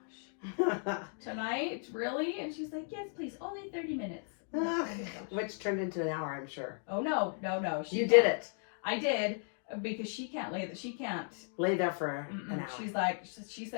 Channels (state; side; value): silent; right; 54 dB below the other